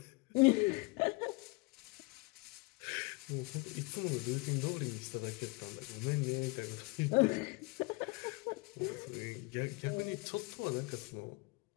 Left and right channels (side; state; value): right; quieter; 27.3 dB